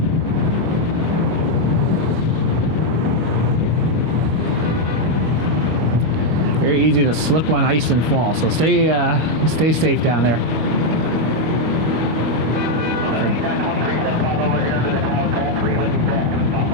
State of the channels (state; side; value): late; left; 25 ms